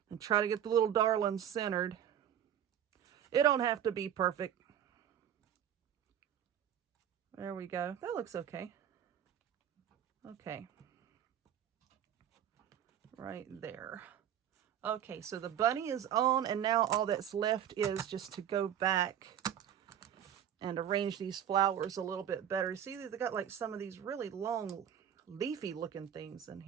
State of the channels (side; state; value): left; quieter; 9.7 dB